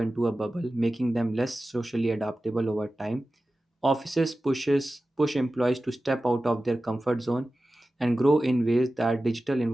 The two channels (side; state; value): both; normal; correlation 0.95